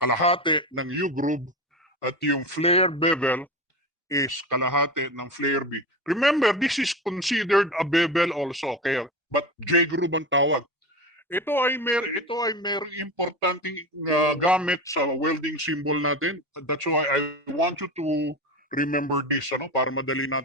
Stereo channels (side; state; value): both; normal; correlation 0.25